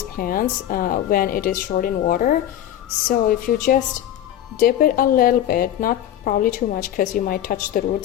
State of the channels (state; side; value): quieter; right; 11.7 dB